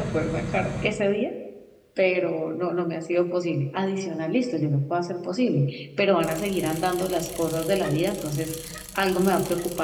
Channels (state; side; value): identical; both; correlation 1.00